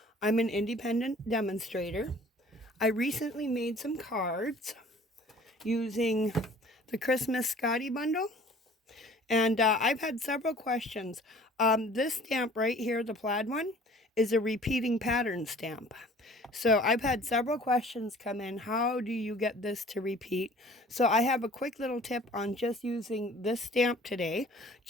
I'm an independent demonstrator. I recently made some cards using the Christmas Scotty bundle, and I've had several questions. This stamp right here, the plaid one, is a repeating pattern stamp. So I've had several questions come in. How do you get this to repeat? So I have a quick little tip on just using this stamp today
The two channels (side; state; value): both; normal; correlation 0.50